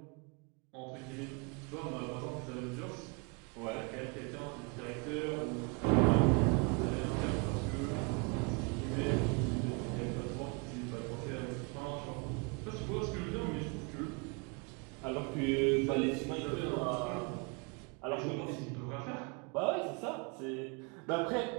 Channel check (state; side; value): quieter; left; 32.2 dB